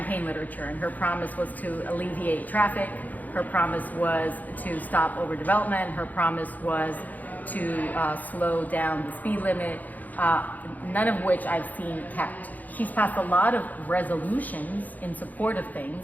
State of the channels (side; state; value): right; late; 0.081 ms